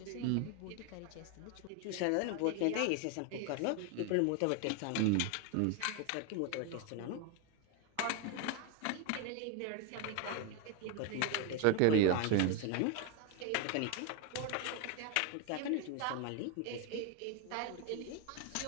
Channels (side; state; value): both; different; correlation 0.01